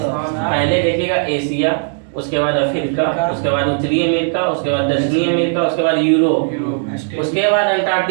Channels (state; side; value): silent; left; 63 dB below the other